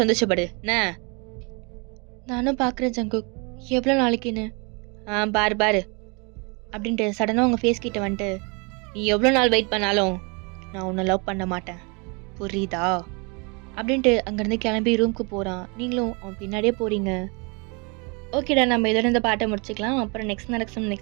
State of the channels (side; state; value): left; quieter; 31.5 dB